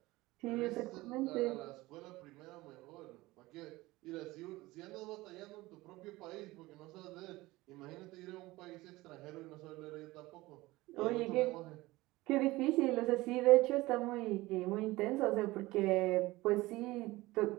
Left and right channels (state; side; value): quieter; left; 19.6 dB